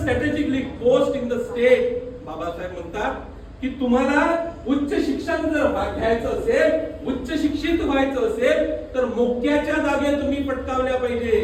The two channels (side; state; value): both; identical; correlation 1.00